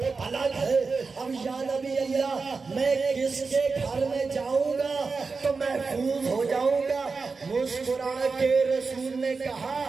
الگ ہے۔ اب یا نبی اللہ میں کس کے گھر میں جاؤں گا تو محفوظ ہو جاؤں گا؟ مسکرا کے رسول نے کہا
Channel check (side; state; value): left; quieter; 4.5 dB